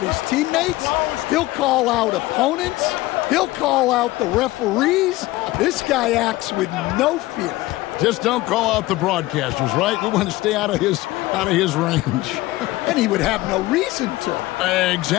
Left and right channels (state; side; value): quieter; right; 18.6 dB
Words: his teammates. He'll call out opponents. He'll call out the referees. This guy acts with no fear. Just don't call out the broadcasters, right? We want to stay out of his range. And he would have no reason to.